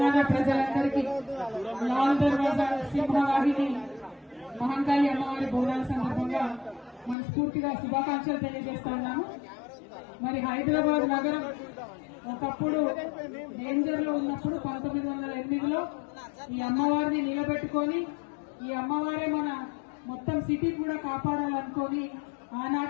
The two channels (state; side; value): drops out; right; at 7.2 s